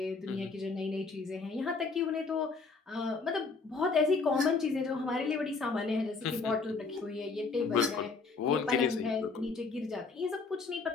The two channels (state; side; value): quieter; right; 4.3 dB